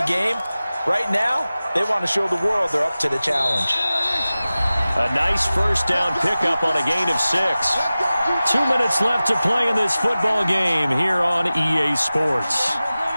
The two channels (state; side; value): inverted; both; correlation -0.96